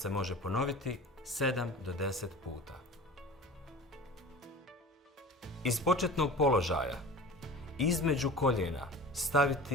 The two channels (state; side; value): normal; both; correlation 0.37